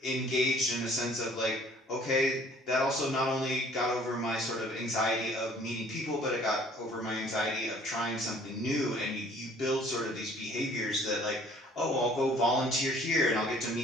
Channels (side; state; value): both; normal; correlation 0.56